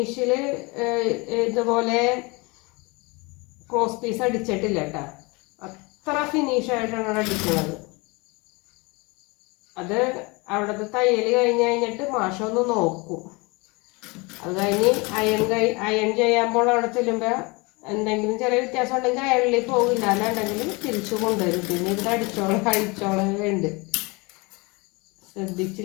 ഇതുപോലെ ക്രോസ് പീസ് അടിച്ചിട്ടില്ല കേട്ടോ. അത്ര ഫിനിഷായിട്ടാണ് അടിക്കുന്നത്. അത് അവിടുത്തെ തയ്യൽ കഴിഞ്ഞിട്ട് മാഷൊന്ന് നോക്കും. അത് കഴിഞ്ഞ് അയൺ ചെയ്യുമ്പോൾ അവിടെ ചെല്ലുമ്പോൾ എന്തെങ്കിലും ചെറിയ വ്യത്യാസം ഉണ്ടെങ്കിൽ അയണിൽ പോകില്ല. അല്ലാണ്ടെങ്കിൽ തിരിച്ചു കൊണ്ടുവരും. പിന്നെ ഇവിടെ അഴിച്ചോളം ഉണ്ട്.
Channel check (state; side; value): quieter; right; 26.8 dB